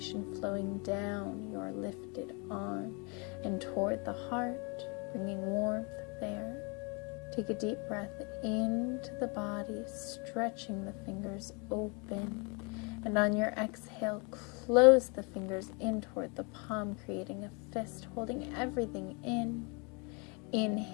flowing down your lifted arm and toward the heart, bringing warmth there. Take a deep breath into the body, stretching the fingers open. And on your exhale, close the fingers in toward the palm, creating a fist, holding everything in.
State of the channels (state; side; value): quieter; right; 32.4 dB